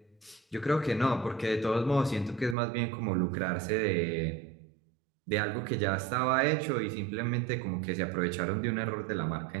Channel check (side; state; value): left; drops out; at 2.6 s